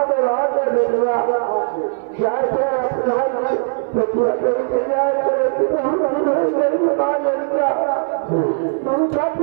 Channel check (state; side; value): silent; left; digital silence